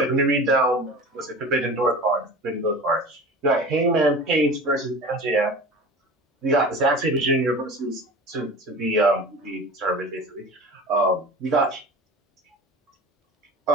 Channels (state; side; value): normal; both; correlation 0.35